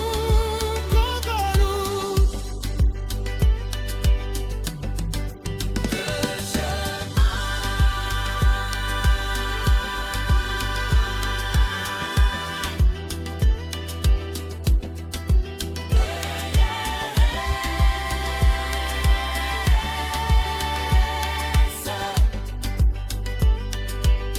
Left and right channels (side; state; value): both; identical; correlation 1.00